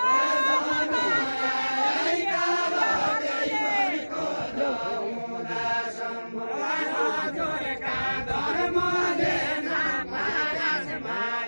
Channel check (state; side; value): inverted; both; correlation -1.00